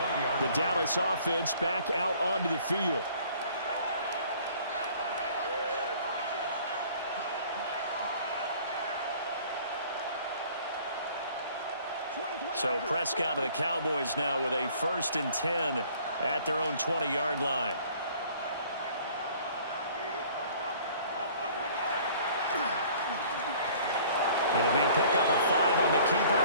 The Dallas offense back out onto the field. So Prescott of the Cowboys now with a 1st and 10 at their own 20-yard line. It'll be a pickup of 5 on the keeper.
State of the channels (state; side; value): inverted; both; correlation -0.53